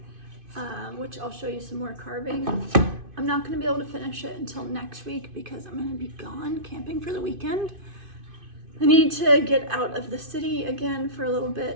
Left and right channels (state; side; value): late; left; 2.5 ms